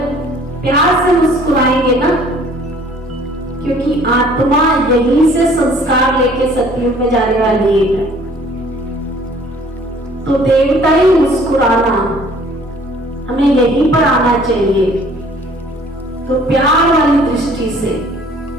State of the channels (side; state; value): both; normal; correlation 0.55